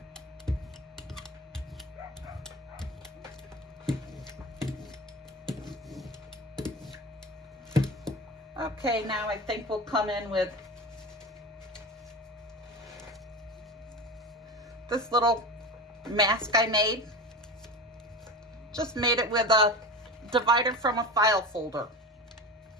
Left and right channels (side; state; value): both; normal; correlation 0.27